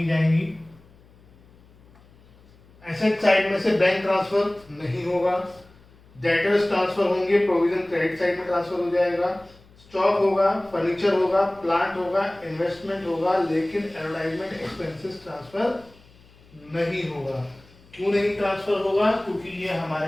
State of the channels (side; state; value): left; noise; hum, 27 dB below the sound